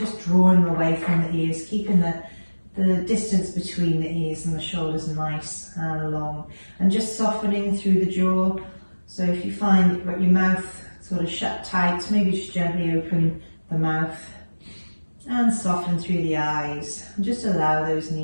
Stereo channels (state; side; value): inverted; both; correlation -1.00